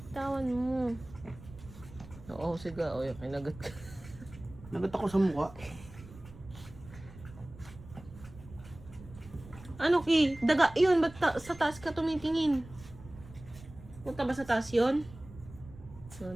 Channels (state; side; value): noise; right; rumble, 17 dB below the sound